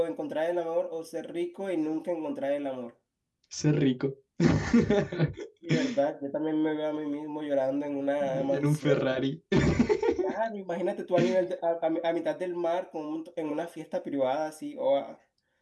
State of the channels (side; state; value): both; identical; correlation 1.00